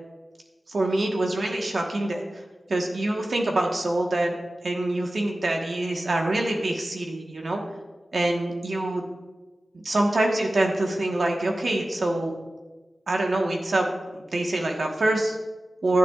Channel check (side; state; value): both; normal; correlation 0.95